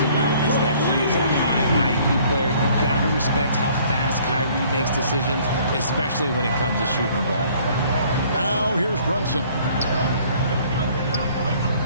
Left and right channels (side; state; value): both; inverted; correlation -0.58